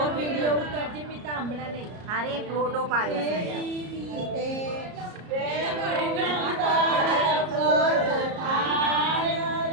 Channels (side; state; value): left; late; 34 ms